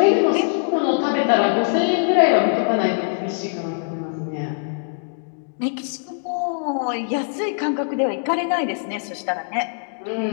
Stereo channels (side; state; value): right; silent; digital silence